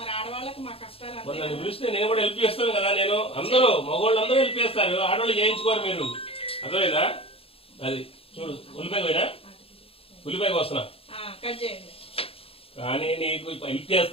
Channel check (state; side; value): late; right; 0.27 ms